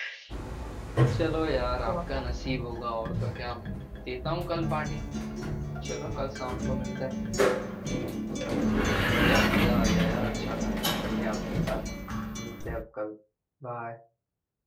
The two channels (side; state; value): both; identical; correlation 1.00